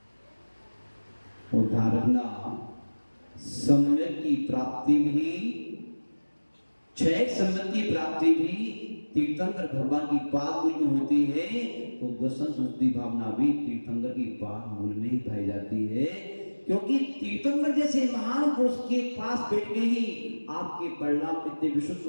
और ध्यान रखना, सम्यक की प्राप्ति भी, क्षय सम्यक की प्राप्ति भी तीर्थंकर भगवान की पाद मूल में होती है, तो दर्शन शुद्धि भावना भी तीर्थंकर की पाद मूल में ही पाई जाती है। क्योंकि तीर्थंकर जैसे महान पुरुष के पास बैठ के ही आपके परिणाम कितने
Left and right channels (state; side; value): inverted; both; correlation -1.00